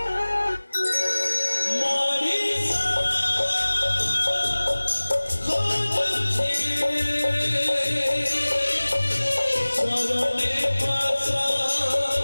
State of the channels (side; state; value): both; inverted; correlation -1.00